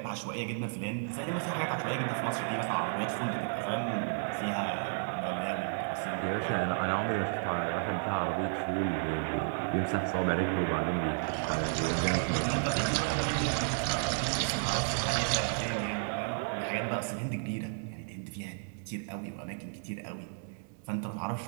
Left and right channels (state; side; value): silent; left; digital silence